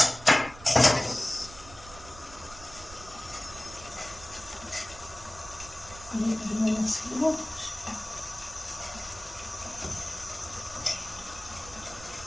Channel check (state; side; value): noise; right; rumble, 17 dB below the sound